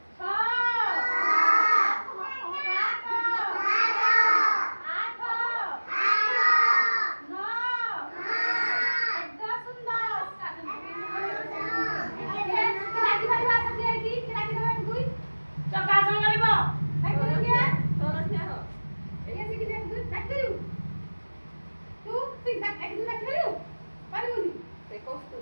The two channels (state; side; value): inverted; both; correlation -1.00